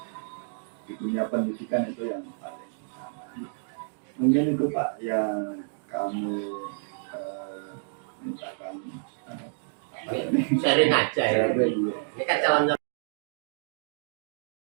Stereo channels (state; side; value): silent; left; digital silence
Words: Di dunia pendidikan itu yang paling utama. Mungkin itu Pak yang kami mintakan Sharing aja ya. sharing. Ini kan calon